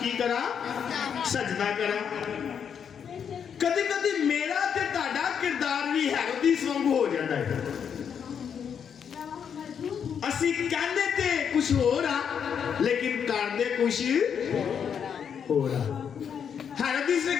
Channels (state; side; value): quieter; right; 7.6 dB